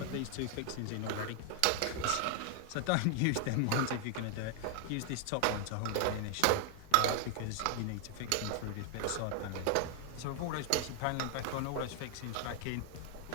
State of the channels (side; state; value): both; different; correlation 0.00